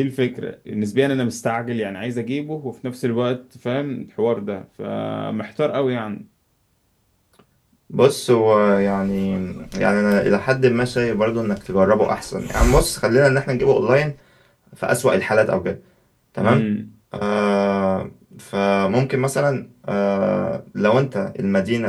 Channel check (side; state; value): both; identical; correlation 1.00